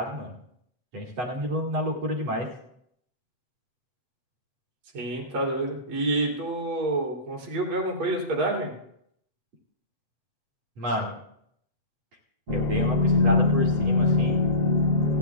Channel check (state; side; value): late; left; 8.1 ms